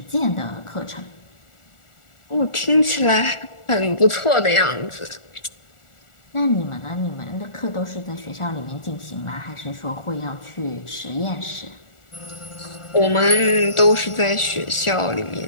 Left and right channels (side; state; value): right; late; 1.4 ms